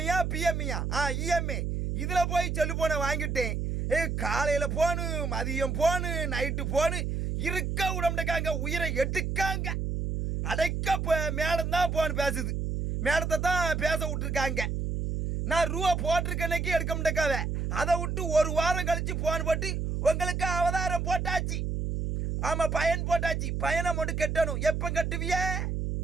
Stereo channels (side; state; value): right; noise; hum, 1 dB below the sound